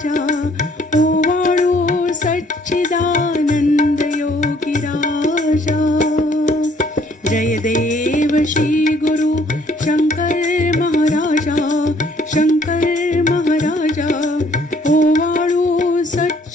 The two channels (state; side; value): normal; both; correlation 0.62